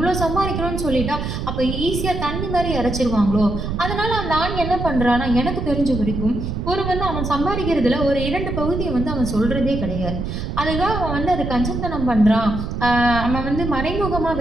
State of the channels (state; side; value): noise; right; rumble, 4 dB below the sound